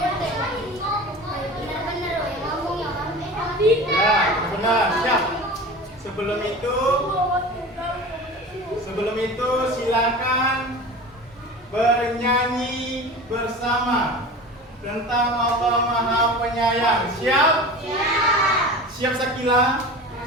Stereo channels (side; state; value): both; normal; correlation 0.35